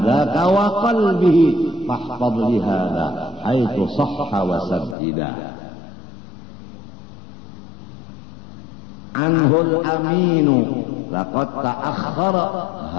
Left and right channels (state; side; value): drops out; right; at 5.0 s